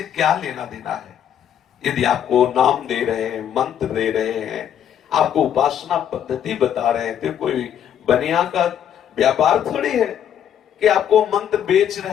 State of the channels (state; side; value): quieter; right; 9.5 dB